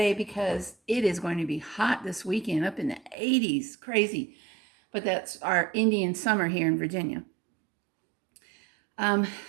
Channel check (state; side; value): drops out; left; at 3.2 s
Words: because it is going to be hot this weekend, up in the 80s. Crazy. But that's our Indian summer here in Virginia. Um,